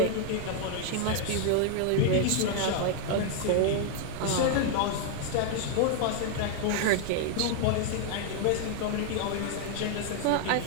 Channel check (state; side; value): different; both; correlation 0.00